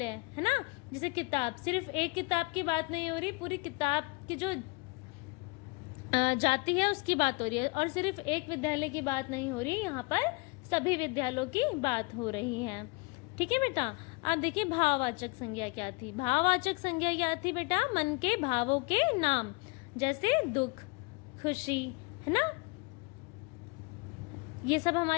है ना। जैसे किताब, सिर्फ एक किताब की बात नहीं हो रही, पूरी किताब की जो जाति है उसकी बात हो रही है, और सिर्फ एक विद्यालय की बात नहीं हो रही, यहाँ पर सभी विद्यालयों की बात हो रही है, ठीक है बेटा। अब देखिए भाववाचक संज्ञा क्या थी। भाववाचक संज्ञा क्या थी बेटा? मन के भावों के नाम, जैसे दुख, खुशी, है ना। ये सब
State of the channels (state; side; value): quieter; right; 28.7 dB